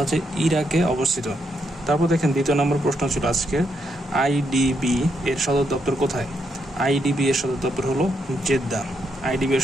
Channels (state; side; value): normal; both; correlation 0.79